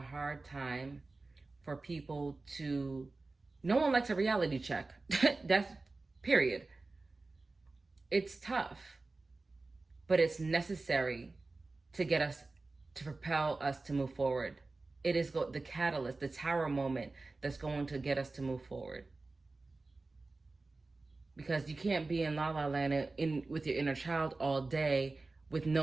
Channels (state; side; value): quieter; left; 3.4 dB